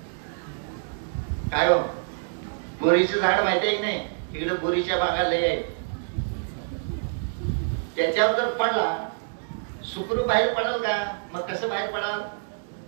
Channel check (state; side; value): silent; left; digital silence